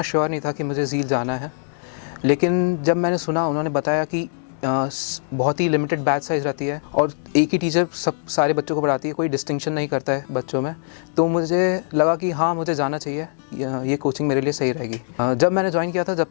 श्योर नहीं था कि मुझे ज़ील जाना है, लेकिन जब मैंने सुना, उन्होंने बताया कि बहुत ही लिमिटेड बैच साइज़ रहती है और एक ही टीचर सारे बच्चों को पढ़ाती है, कोई डिस्टिंक्शन नहीं करता है बच्चों में। तो मुझे लगा कि हाँ, मुझे जाना चाहिए, ये कोचिंग मेरे लिए सही रहेगी। जब मैंने ज्वाइन किया था,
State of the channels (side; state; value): right; silent; 64 dB below the other